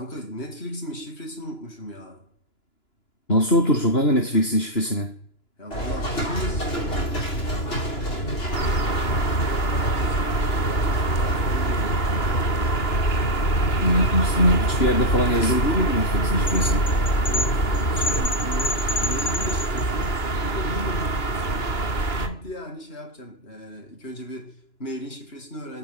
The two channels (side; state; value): right; late; 2.9 ms